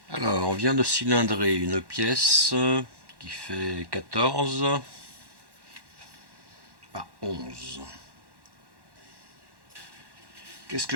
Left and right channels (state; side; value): late; left; 1.1 ms